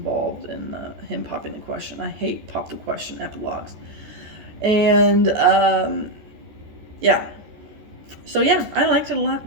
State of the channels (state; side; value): late; left; 14 ms